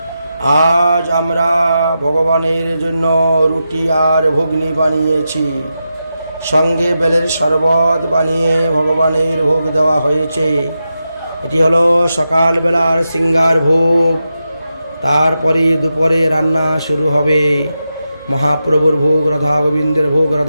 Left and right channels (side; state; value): both; inverted; correlation -0.89